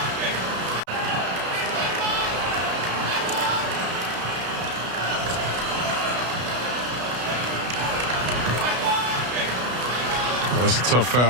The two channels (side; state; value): left; late; 33 ms